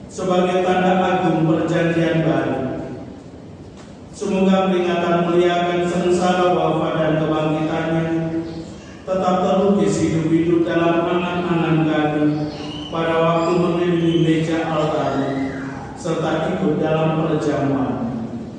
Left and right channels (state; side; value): identical; both; correlation 1.00